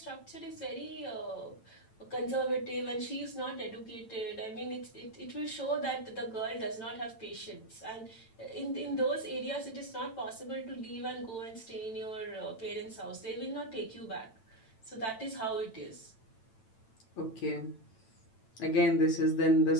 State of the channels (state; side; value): late; right; 9.0 ms